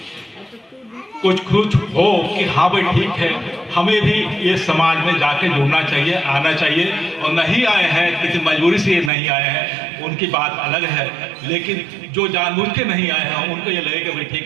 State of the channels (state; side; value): drops out; left; at 9.1 s